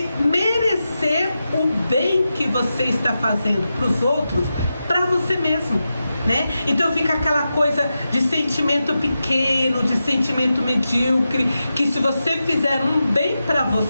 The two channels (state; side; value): inverted; both; correlation -0.90